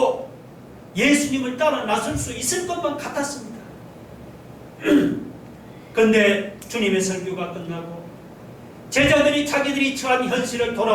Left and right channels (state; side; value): identical; both; correlation 1.00